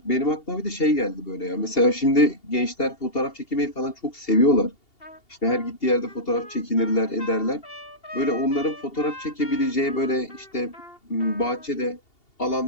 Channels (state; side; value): late; right; 2.8 ms